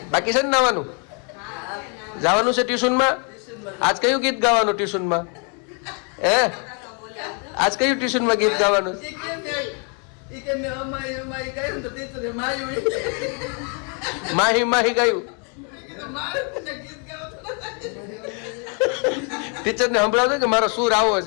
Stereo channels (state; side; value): quieter; right; 37.8 dB